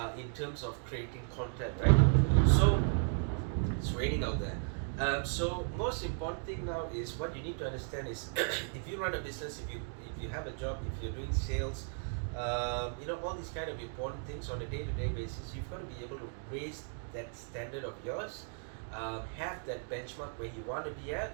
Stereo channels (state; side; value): silent; left; 54 dB below the other